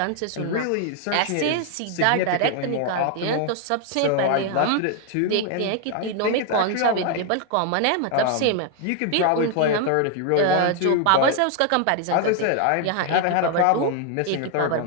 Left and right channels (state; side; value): different; both; correlation 0.00